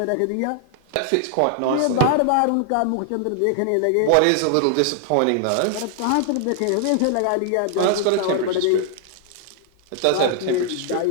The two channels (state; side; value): different; both; correlation 0.00